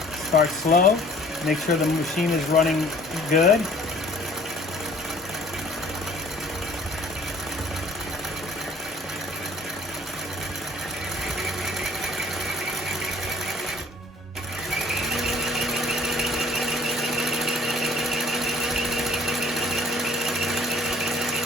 Start slow, make sure the machine is running good.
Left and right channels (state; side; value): normal; both; correlation 0.54